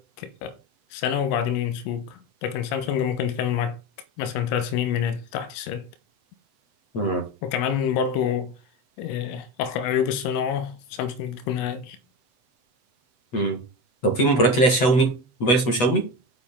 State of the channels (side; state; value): right; late; 8.1 ms